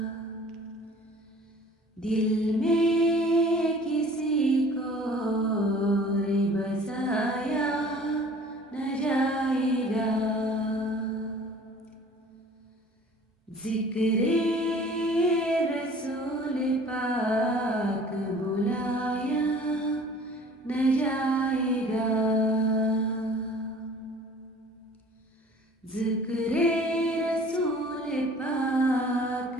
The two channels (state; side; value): normal; both; correlation 0.49